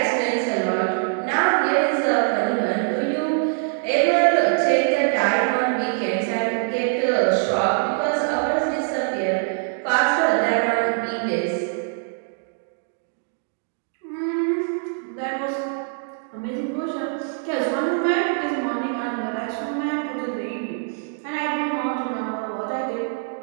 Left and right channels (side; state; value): left; silent; 62 dB below the other